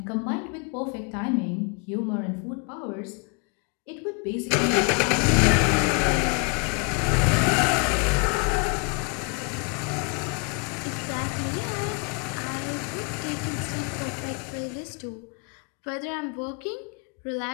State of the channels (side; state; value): right; quieter; 34.1 dB